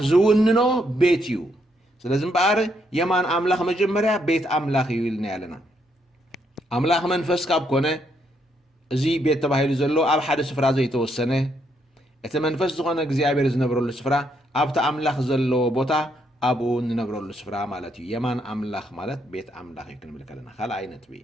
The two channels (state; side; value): normal; both; correlation 0.75